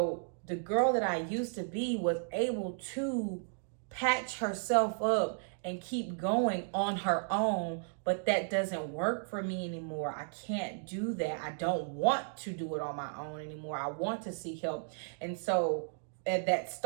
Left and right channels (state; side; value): silent; left; digital silence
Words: the girl that I used to be was able to patch herself up and keep going on her own, but that doesn't work for me anymore. I can't do that. I don't want to do it on my own anymore. I want to seek help. And so that